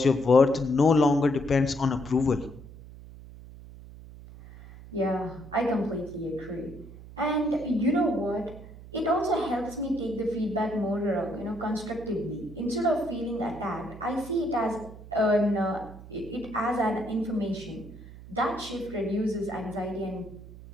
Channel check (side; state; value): right; noise; hum, 16 dB below the sound